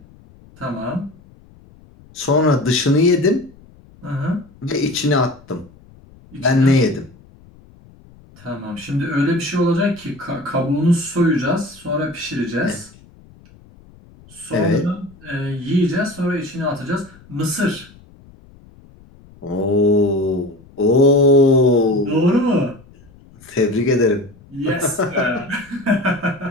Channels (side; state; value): left; noise; rumble, 25 dB below the sound